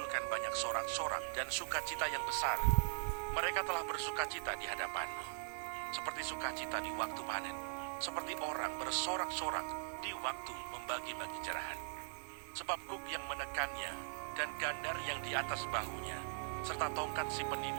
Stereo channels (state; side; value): silent; left; 51 dB below the other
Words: banyak sorak-sorak dan sukacita yang besar. Mereka telah bersukacita di hadapanmu, seperti sukacita di waktu panen, seperti orang bersorak-sorak di waktu membagi-bagi jerahan. Sebab kuk yang menekannya dan gandar yang di atas bahunya, serta tongkat si